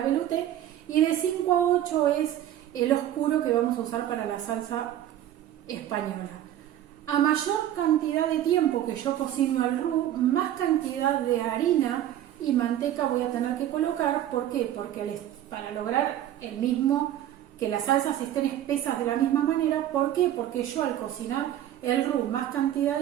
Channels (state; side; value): quieter; left; 11.9 dB